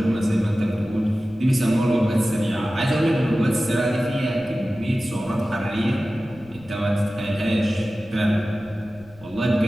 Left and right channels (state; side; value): noise; left; rumble, 24 dB below the sound